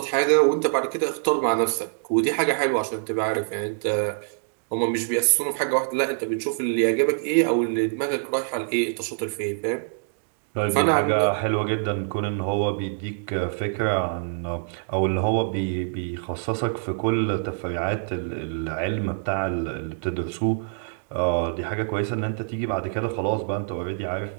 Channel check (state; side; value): silent; left; digital silence